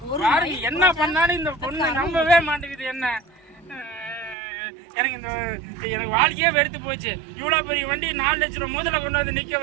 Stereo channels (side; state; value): left; drops out; at 4.4 s